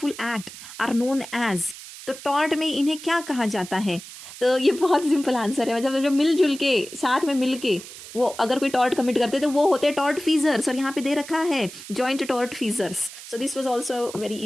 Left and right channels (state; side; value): noise; right; hiss, 14 dB below the sound